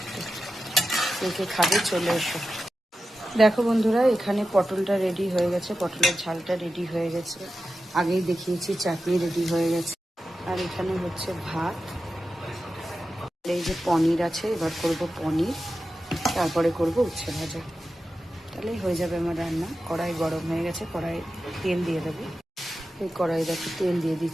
কে খাবে চলে এসো। দেখো বন্ধুরা, এখানে পটলটা রেডি হয়ে গেছে, পটলের ঝালটা রেডি হয়ে গেছে, আগেই দেখিয়েছি। চাটনি রেডি হয়ে গেছে, আর এখানে হচ্ছে ভাত। এই যে পনির আছে, এবার করব পনির, তারপরে করব উচ্ছে ভাজা। তাহলেই হয়ে যাবে আমার রান্না। কড়াই গরম হয়ে গেছে, কড়াই তেল দিয়ে দেবো। এই কড়াই দেখো তেল দিয়ে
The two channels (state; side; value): normal; both; correlation 0.92